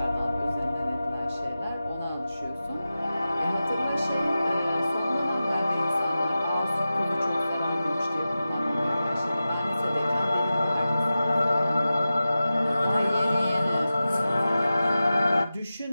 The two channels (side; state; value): both; inverted; correlation -0.94